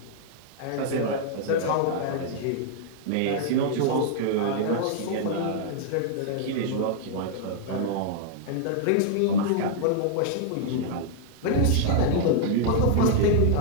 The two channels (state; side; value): different; both; correlation -0.01